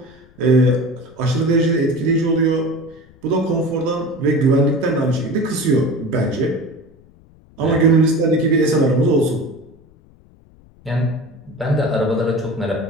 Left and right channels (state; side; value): noise; left; rumble, 27 dB below the sound